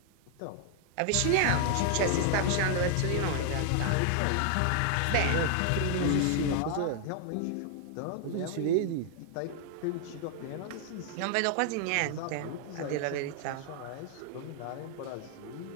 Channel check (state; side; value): different; both; correlation 0.00